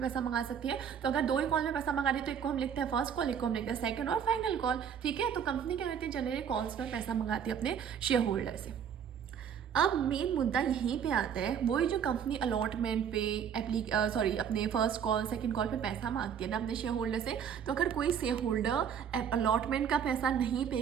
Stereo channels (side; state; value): left; quieter; 8.0 dB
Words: पैसा मंगा सकती है। तो अगर 2 ही कॉल में पैसा मंगा रही है तो एक को हम लिखते हैं फर्स्ट कॉल, एक को हम लिखते हैं सेकंड और फाइनल कॉल। ठीक है, तो कंपनी क्या करती है, जनरली कॉल्स में पैसा मंगाती है अपने शेयर होल्डर से। अब मेन मुद्दा यहीं पे आता है, वही जो कंपनी अलॉटमेंट पे अपने फर्स्ट कॉल सेकंड कॉल पे पैसा मांगती है ना अपने शेयर होल्डर से। तो अगर कोई शेयर होल्डर अलॉटमेंट का पैसा नहीं